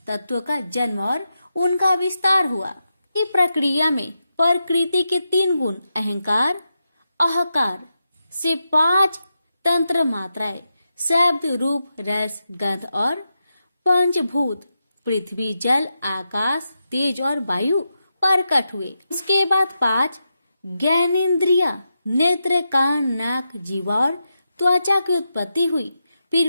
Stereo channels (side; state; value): both; inverted; correlation -0.87